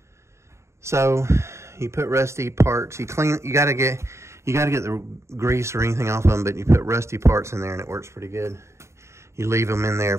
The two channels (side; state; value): left; late; 0.14 ms